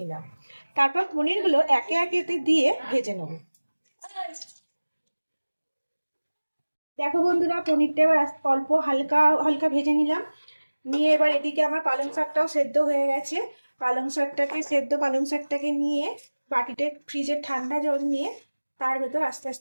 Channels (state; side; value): inverted; both; correlation -1.00